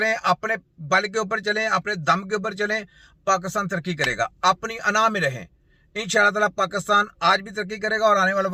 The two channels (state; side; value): identical; both; correlation 1.00